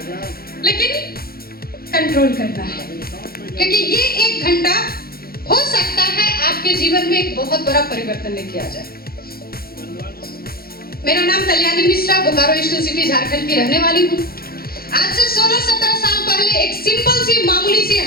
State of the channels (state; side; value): late; right; 0.44 ms